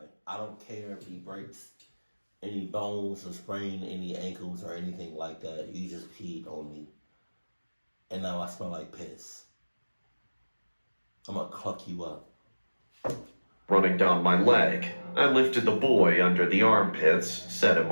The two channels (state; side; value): inverted; both; correlation -1.00